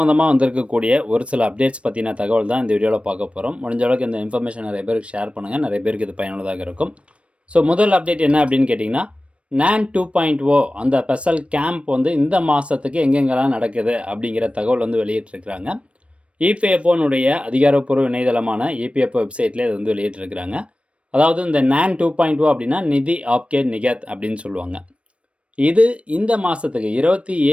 வந்திருக்கக்கூடிய ஒரு சில அப்டேட்ஸ் பற்றின தகவல் தான் இந்த வீடியோவில் பார்க்க போகிறோம். முடிஞ்ச அளவுக்கு இந்த இன்ஃபர்மேஷன் நிறைய பேருக்கு ஷேர் பண்ணுங்கள், நிறைய பேருக்கு இது பயனுள்ளதாக இருக்கும். ஸோ முதல் அப்டேட் என்ன அப்படின்னு கேட்டிங்கன்னா, NAN 2.0 அந்த ஸ்பெஷல் கேம்ப் வந்து இந்த மாதத்துக்கு எங்கெங்கெல்லாம் நடக்குது அப்படிங்கிற தகவல் வந்து வெளியிட்டிருக்கிறாங்க. இபிஎஃப்ஓனுடைய அதிகாரப்பூர்வ இணையதளமான இபிஎஃப்ஓ வெப்சைட்லேயே இது வந்து வெளியிட்டிருக்கிறாங்க. அதாவது இந்த NAN 2.0 அப்படின்னா நிதி ஆப்கே நிகத் அப்படின்னு சொல்லுவாங்க. இது இந்த மாதத்துக்கு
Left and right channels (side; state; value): left; late; 0.061 ms